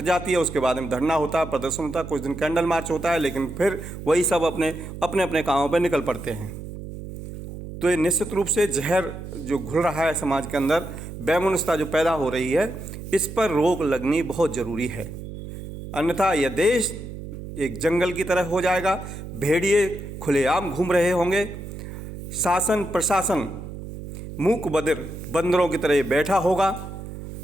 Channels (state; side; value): noise; right; hum, 10 dB below the sound